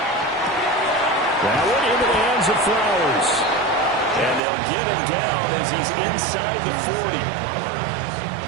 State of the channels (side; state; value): left; drops out; at 4.4 s